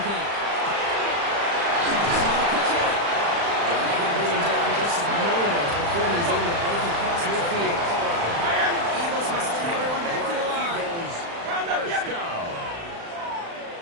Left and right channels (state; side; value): late; left; 35 ms